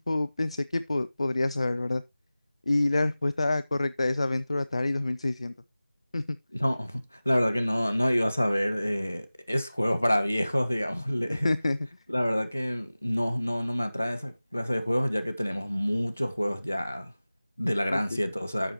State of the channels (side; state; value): both; inverted; correlation -0.97